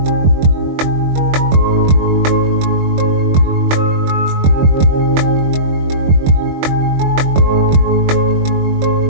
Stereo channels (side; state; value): left; late; 21 ms